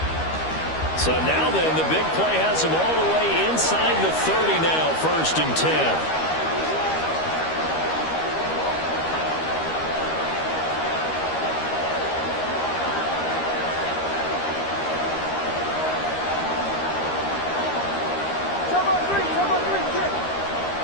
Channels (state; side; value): late; right; 13 ms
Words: So now then, the big play has him all the way inside the 30 now, first and 10.